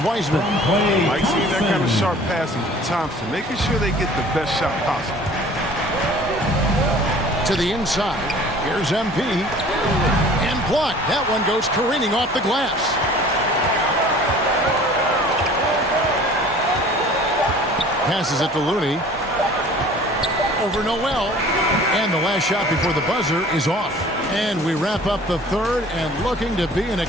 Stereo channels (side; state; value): both; normal; correlation 0.48